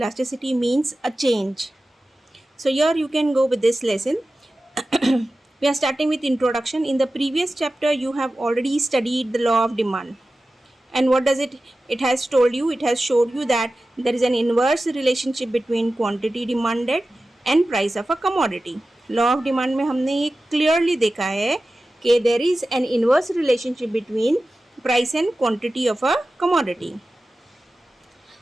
means a change. So here you can go with this lesson. We are starting with introduction. In the previous chapter you have already studied the law of demand, and what does it has told you, it has showed you that there is an inverse relationship between quantity demanded and price of a commodity. Law of demand में हमने ये clearly देखा है कि there is an inverse relationship between price and quantity of a commodity.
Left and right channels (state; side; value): normal; both; correlation 0.95